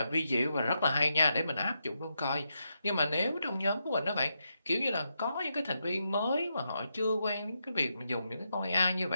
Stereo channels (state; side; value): inverted; both; correlation -0.84